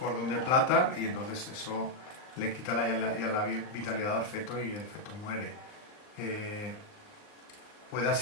de plata y entonces eso le quita la vitalidad al feto y el feto muere. Puede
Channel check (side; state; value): right; late; 39 ms